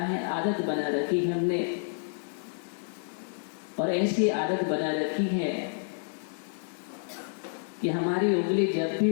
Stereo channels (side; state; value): right; silent; digital silence